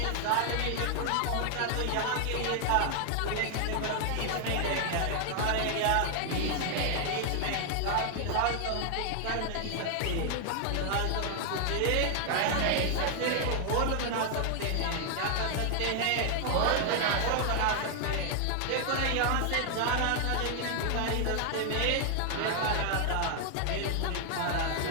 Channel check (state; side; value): different; both; correlation 0.00